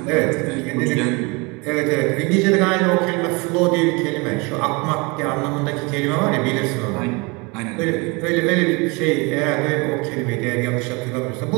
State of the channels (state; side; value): quieter; left; 27.9 dB